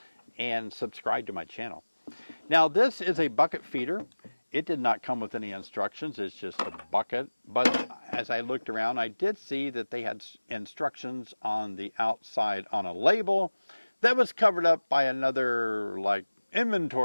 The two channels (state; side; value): inverted; both; correlation -1.00